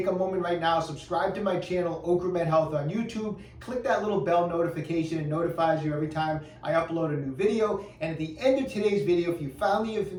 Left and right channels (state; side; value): identical; both; correlation 1.00